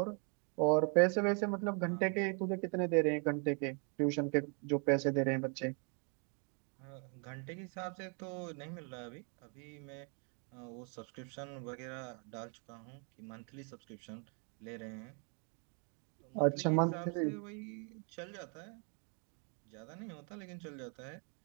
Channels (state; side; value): quieter; left; 38.9 dB